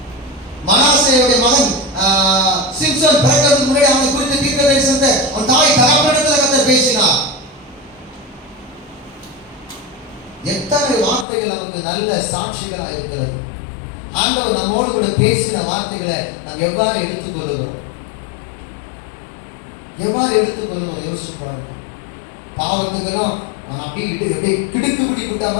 மனாசேயுடைய மகன் சிம்சன் பிறக்கிறதுக்கு முன்னாடி அவனை குறித்த தீர்க்கதரிசனத்தை அவன் தாய் தகப்பனிடத்தில் கர்த்தர் பேசினார். எத்தனை வார்த்தைகள் நமக்கு நல்ல சாட்சிகளாக இருக்கிறது. ஆண்டவர் நம்மோடு கூட பேசின வார்த்தைகளை நாம் எவ்வாறு எடுத்துக்கொள்ளுகிறோம்? யோசிச்சு பாருங்க. பாவத்துக்கெல்லாம் அப்படியே கிடுக்கு பிடி விட்டா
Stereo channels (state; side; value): drops out; right; at 11.2 s